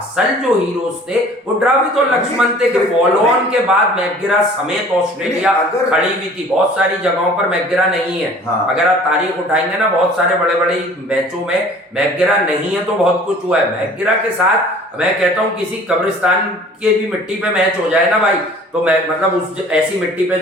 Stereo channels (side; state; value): both; normal; correlation 0.49